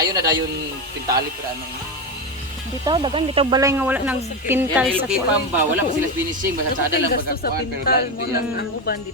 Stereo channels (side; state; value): both; normal; correlation 0.15